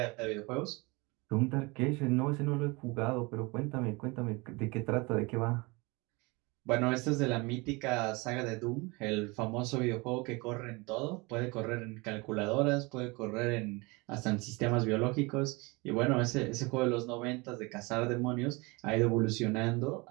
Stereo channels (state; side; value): quieter; left; 26.0 dB